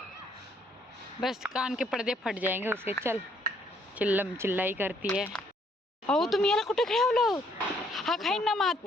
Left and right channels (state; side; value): normal; both; correlation 0.67